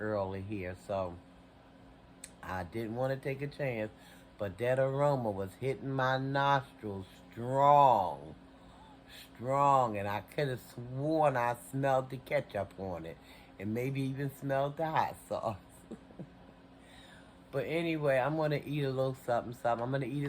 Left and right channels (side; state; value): both; identical; correlation 1.00